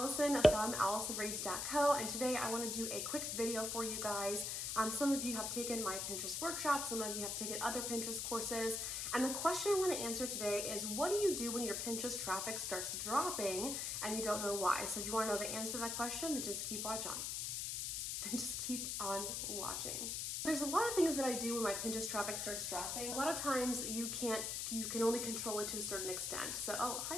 from AllisonRaves.co, and today I want to do a quick video for you guys. Some of you have taken my Pinterest workshop, some of you have taken other Pinterest courses, and the question I want to answer today is, what do you do when your Pinterest traffic starts dropping and you don't know why? So if you want to know the answer to that question, then just keep watching. There's a lot of things that I do when my Pinterest traffic starts dropping. A lot of times you can only control it to a certain extent. So, oh, hi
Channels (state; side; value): noise; left; hiss, 2 dB below the sound